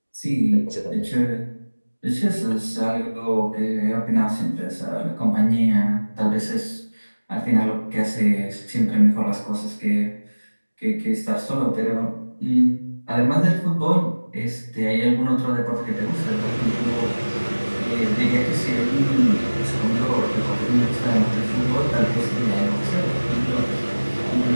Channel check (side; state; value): both; inverted; correlation -1.00